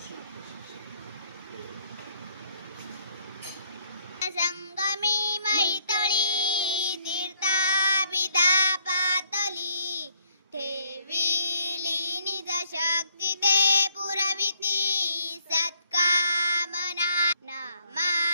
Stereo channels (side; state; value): both; inverted; correlation -0.67